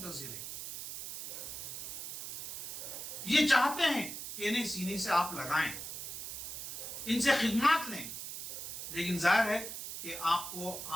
ہیں. یہ چاہتے ہیں کہ انہیں سینے سے آپ لگائیں، ان سے خدمات لیں، لیکن ظاہر ہے کہ آپ کو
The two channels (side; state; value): right; noise; hiss, 7 dB below the sound